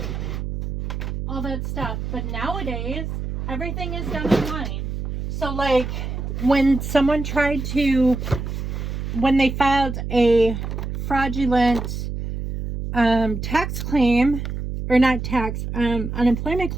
all that stuff. But nowadays, everything is done online. So like, when someone tried to, when they filed a fraudulent tax claim, or not tax, unemployment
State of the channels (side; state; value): right; noise; hum, 4 dB below the sound